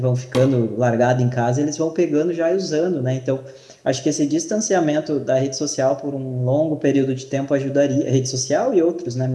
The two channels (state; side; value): identical; both; correlation 1.00